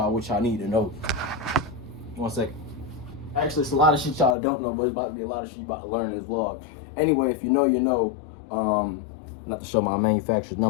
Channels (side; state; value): right; drops out; at 4.4 s